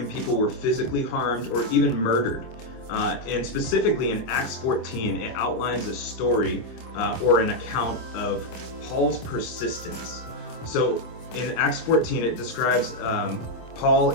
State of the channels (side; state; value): right; late; 26 ms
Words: people were physically harmed or even murdered. And specifically in Acts 14, it outlines a story or an account of Paul's persistence. So in Acts 14, it describes Paul